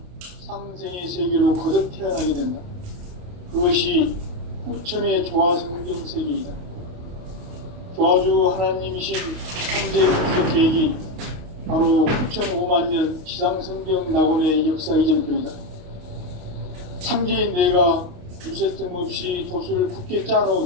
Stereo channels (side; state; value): left; late; 28 ms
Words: 상생의 세계로 거듭 태어나게 된다. 그것이 후천의 조화성경 세계이다. 조화주 하나님이신 현재 그 계획이 바로 9,500년 지상성경 낙원의 역사 이전표이다. 상제인 내가 유세 틈 없이 도수를 굳게